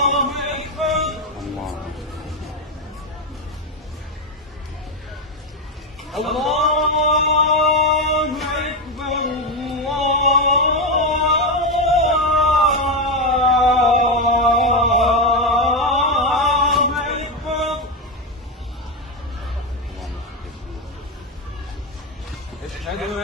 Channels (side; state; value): both; normal; correlation 0.10